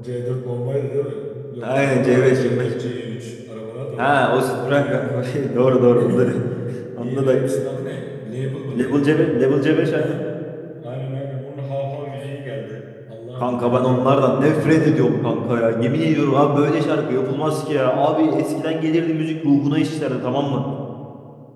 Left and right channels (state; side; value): identical; both; correlation 1.00